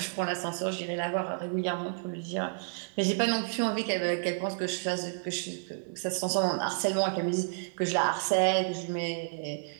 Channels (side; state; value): left; silent; digital silence